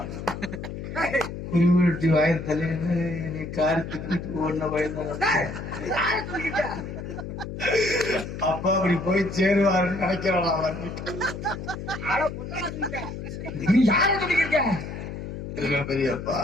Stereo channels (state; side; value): noise; left; hum, 8 dB below the sound